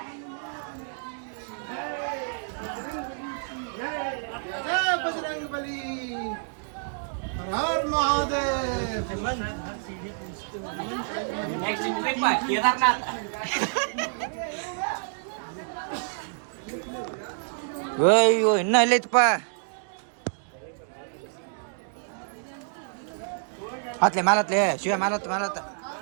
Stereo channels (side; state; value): left; silent; digital silence